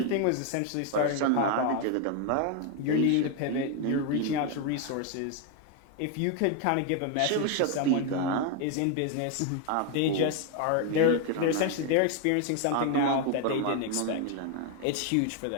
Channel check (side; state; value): both; different; correlation 0.01